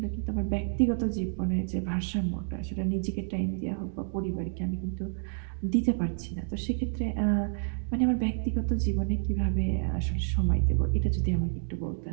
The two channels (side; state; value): left; silent; digital silence